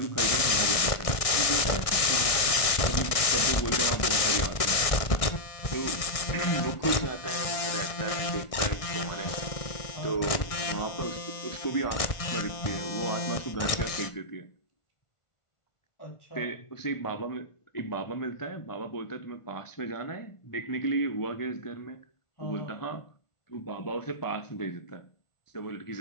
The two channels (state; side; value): late; right; 1.6 ms